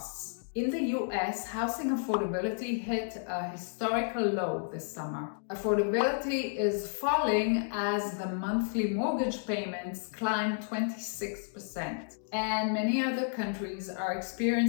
In the US, housing affordability hit a historical low this summer. Affordability is falling as the monthly mortgage payments climb 26%, and many other countries are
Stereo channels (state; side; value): silent; right; digital silence